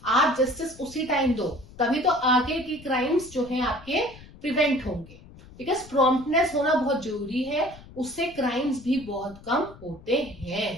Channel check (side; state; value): left; noise; rumble, 20 dB below the sound